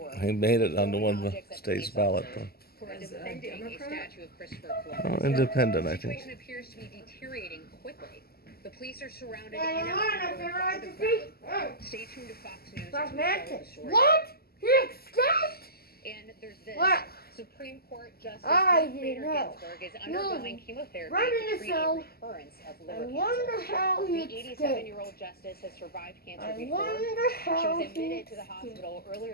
He made it onto one of the state's ballot, though. Who are defending a statue of Christopher Columbus. Oh, independent, I The think. situation appears to be deteriorating quickly. The police are surrounded in and out by the crowd. Stay tuned to Fox News. That's to follow the Mantis. story. What? He escaped? And there's this. What? Supreme Court Justice I Ruth didn't Bader know. Ginsburg is undergoing chemotherapy Right in to the treat a cell. recurrence of I liver wonder cancer. how he The escaped. 87-year-old justice has survived cancer I before. wonder She how was he admitted to the escaped. hospital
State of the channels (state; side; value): late; right; 0.45 ms